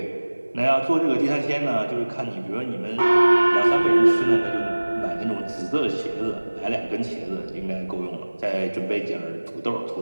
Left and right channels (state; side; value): inverted; both; correlation -1.00